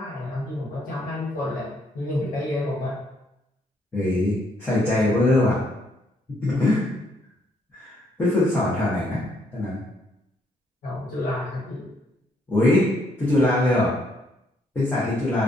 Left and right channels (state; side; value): normal; both; correlation 0.71